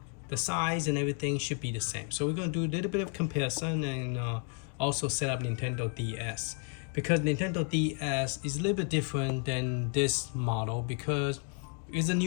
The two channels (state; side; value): quieter; right; 39.9 dB